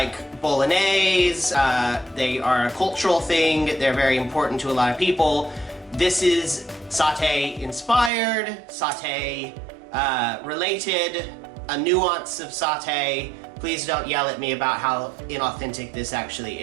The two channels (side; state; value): left; drops out; at 8.1 s